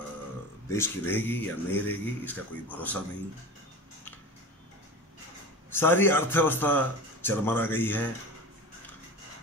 देश की रहेगी या नहीं रहेगी, इसका कोई भरोसा नहीं। सारी अर्थव्यवस्था चरमरा गई है,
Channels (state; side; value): normal; both; correlation 0.32